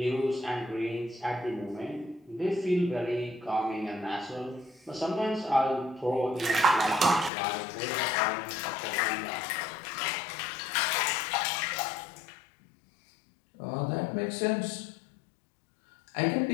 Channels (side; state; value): right; drops out; at 7.3 s